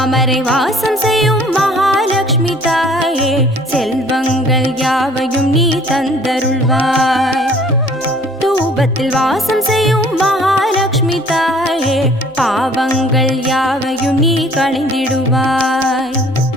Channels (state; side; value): normal; both; correlation 0.55